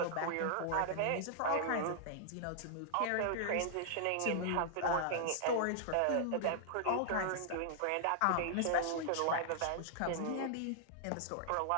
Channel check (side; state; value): both; different; correlation -0.01